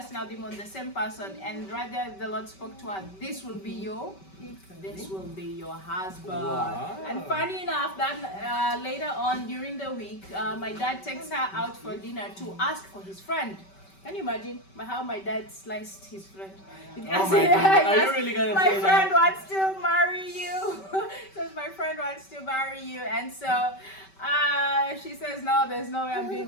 out demons, the same person. And right there, the Lord spoke to her, this will be your husband. Wow. And funny enough, that later on during the week, my dad takes her out for dinner to ask for his friend. Can you imagine how my dad sliced his friend? Oh my God. Are you really gonna my say friend that? wants to marry you. Says my friend wants to marry you, and so she says no, there's no way I'm doing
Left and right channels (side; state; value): right; late; 5.2 ms